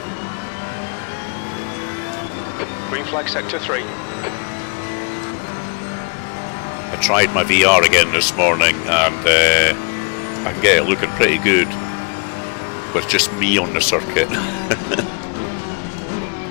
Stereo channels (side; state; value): right; quieter; 36.6 dB